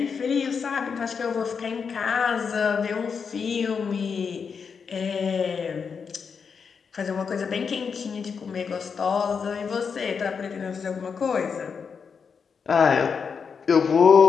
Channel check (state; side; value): quieter; right; 6.0 dB